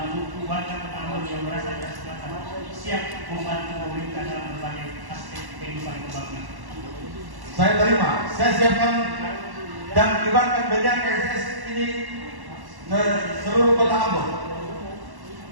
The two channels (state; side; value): late; left; 1.1 ms